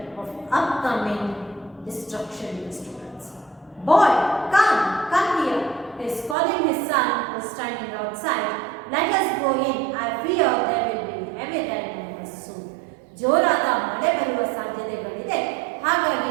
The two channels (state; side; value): drops out; left; at 6.4 s